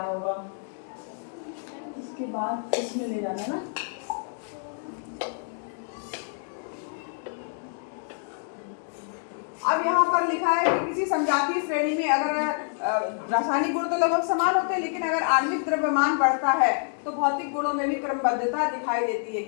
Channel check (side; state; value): right; silent; 60 dB below the other